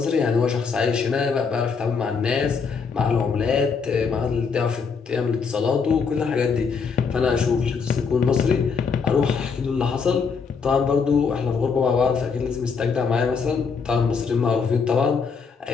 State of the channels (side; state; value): right; quieter; 5.5 dB